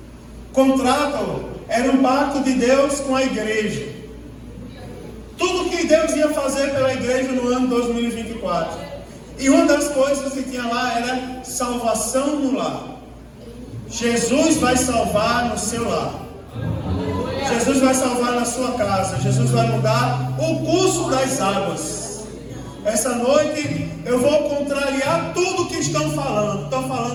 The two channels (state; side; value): identical; both; correlation 1.00